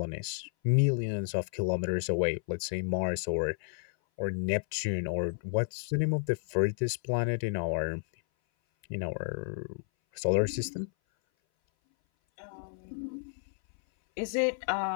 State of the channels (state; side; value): silent; right; 57 dB below the other